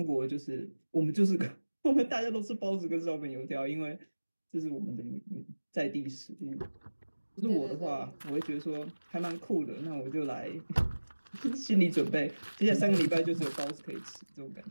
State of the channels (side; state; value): both; inverted; correlation -1.00